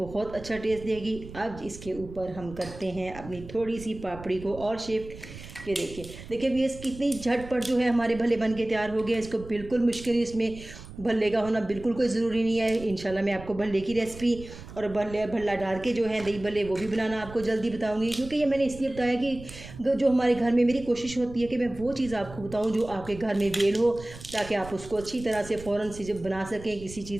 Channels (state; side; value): noise; right; rumble, 15 dB below the sound